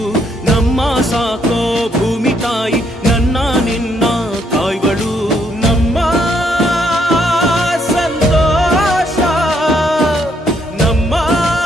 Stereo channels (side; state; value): both; normal; correlation 0.72